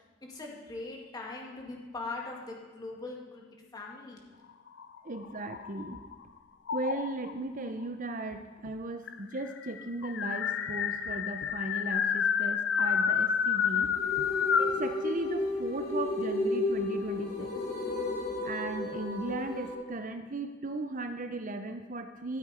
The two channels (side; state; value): right; quieter; 3.2 dB